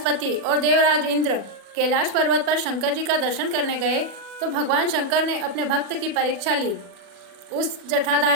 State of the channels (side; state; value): left; late; 40 ms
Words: और देवराज इंद्र कैलाश पर्वत पर शंकर जी का दर्शन करने गए तो भगवान शंकर ने अपने भक्त की परीक्षा ली। उस